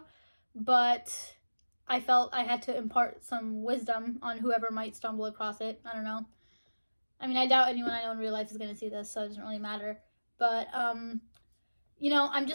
but I felt I had to impart some wisdom on whoever might stumble across it. I don't know. I mean, I doubt anyone I know in real life is going to see this, so it doesn't really matter. But, I'm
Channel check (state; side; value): inverted; both; correlation -1.00